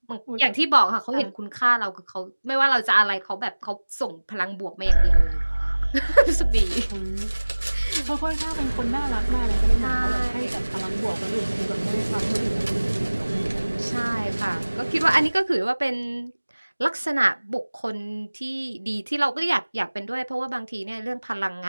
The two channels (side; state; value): both; inverted; correlation -1.00